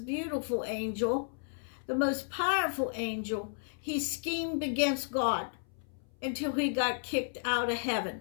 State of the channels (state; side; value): silent; right; 56 dB below the other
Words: beautiful angel, the most powerful angel, he schemed against God until he got kicked out of